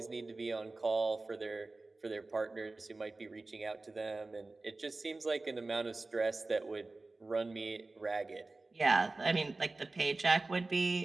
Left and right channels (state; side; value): quieter; left; 3.3 dB